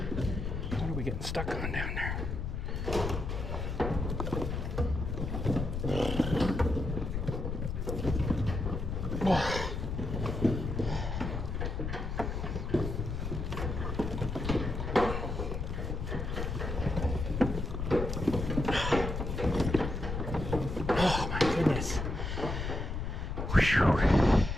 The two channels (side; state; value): left; noise; rumble, 3 dB below the sound